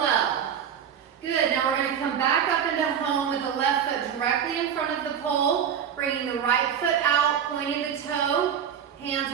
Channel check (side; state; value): left; quieter; 8.4 dB